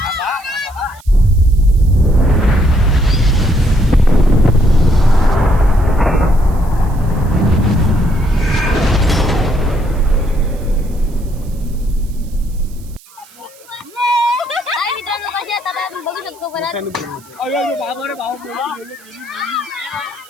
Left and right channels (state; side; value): noise; right; hiss, 25 dB below the sound